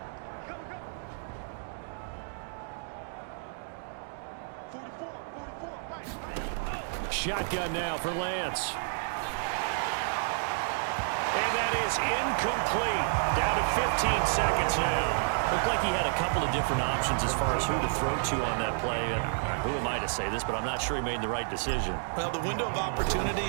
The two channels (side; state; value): left; silent; digital silence